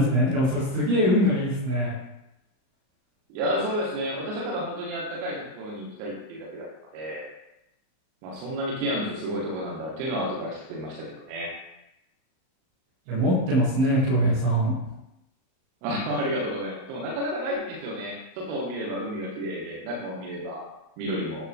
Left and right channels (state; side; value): late; left; 38 ms